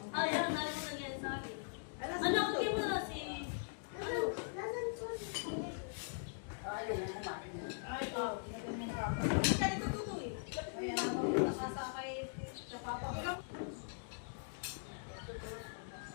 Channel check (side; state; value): right; silent; digital silence